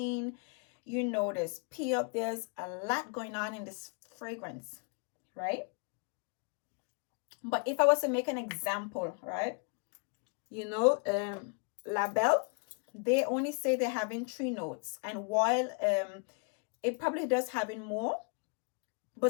There's pear. There's a lot going on in this fragrance, right? But if I was to make an example, right? La Belle, they only say they're having 3 notes. And while it probably does having more,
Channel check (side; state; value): right; quieter; 37.4 dB